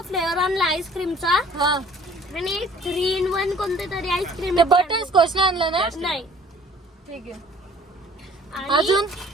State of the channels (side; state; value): both; normal; correlation 0.54